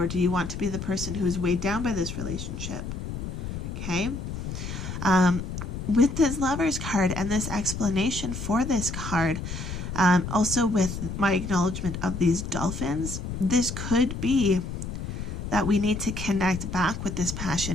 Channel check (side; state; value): left; noise; rumble, 6 dB below the sound